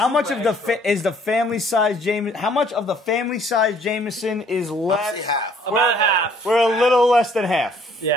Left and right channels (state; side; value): normal; both; correlation 0.60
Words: much of is the family size Jameson? How much of the family size Jameson is I'd left? say half. About half. We're a little less than half.